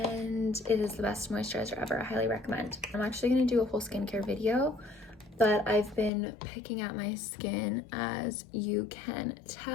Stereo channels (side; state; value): right; drops out; at 6.1 s